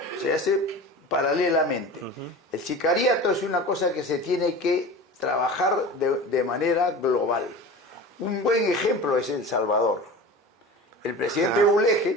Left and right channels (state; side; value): normal; both; correlation 0.34